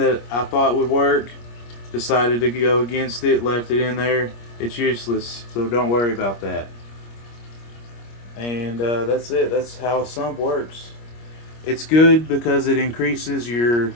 I thought would work. Decided to go against it, left it in there. It's useless, so don't worry about that. And that's it. That's how a sump works. It's good because it increases your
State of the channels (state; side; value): late; right; 25 ms